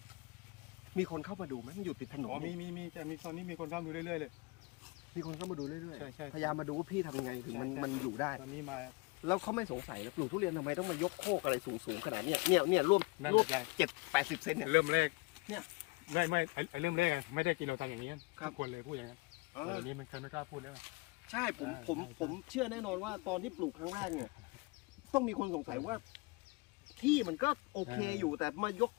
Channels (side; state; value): right; quieter; 26.7 dB